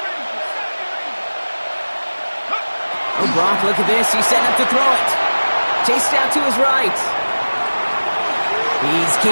Oh, Brock, look at this. He's set up to throw it. Chased out to his right. He's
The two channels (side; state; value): both; inverted; correlation -1.00